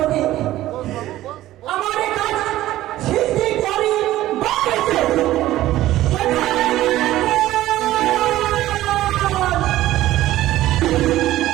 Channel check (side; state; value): left; quieter; 14.9 dB